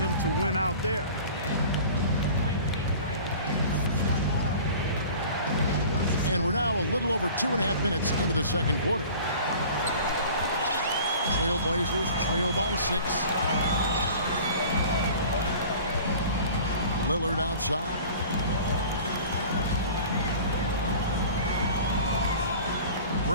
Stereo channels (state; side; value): inverted; both; correlation -0.43